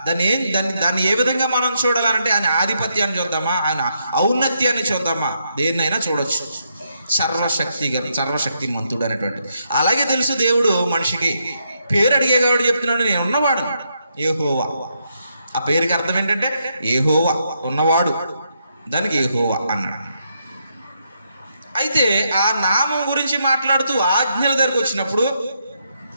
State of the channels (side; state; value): both; inverted; correlation -0.78